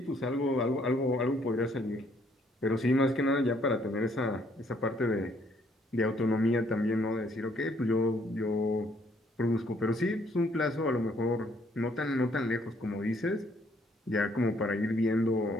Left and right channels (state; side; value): normal; both; correlation 0.66